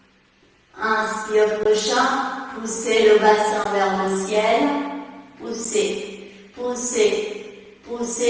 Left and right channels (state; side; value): identical; both; correlation 1.00